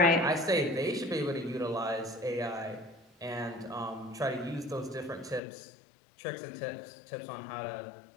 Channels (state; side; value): drops out; right; at 5.4 s